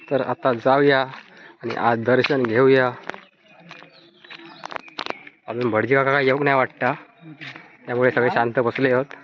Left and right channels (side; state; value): both; identical; correlation 1.00